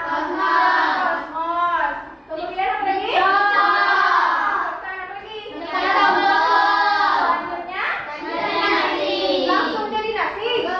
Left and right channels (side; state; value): both; identical; correlation 1.00